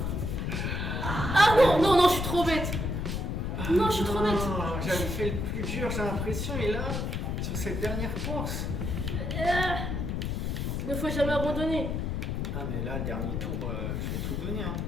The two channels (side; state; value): left; noise; rumble, 1 dB below the sound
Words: Ah non, non, non, je suis trop bête. Non, je suis trop bête. J'avais fait le plus dur, j'ai l'impression, et là, sur cette dernière course. Ne faut jamais abandonner. Ah mais là, dernier tour, je vais tout donner. Hein.